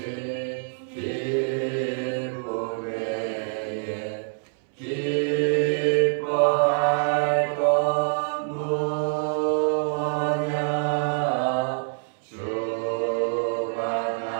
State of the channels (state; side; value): silent; left; 61 dB below the other